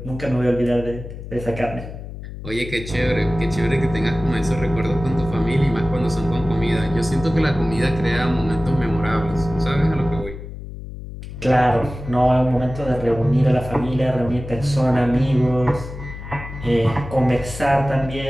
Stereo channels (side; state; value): left; noise; hum, 11 dB below the sound